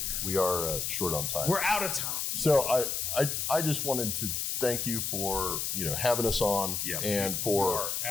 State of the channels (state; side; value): noise; left; hiss, 1 dB below the sound